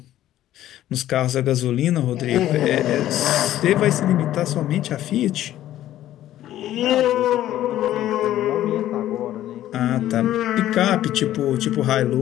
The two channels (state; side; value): quieter; right; 13.1 dB